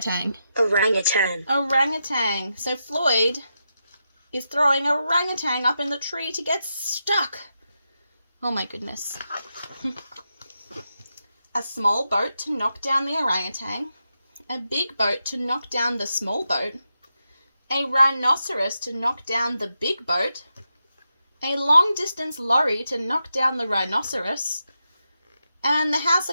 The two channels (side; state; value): both; inverted; correlation -0.87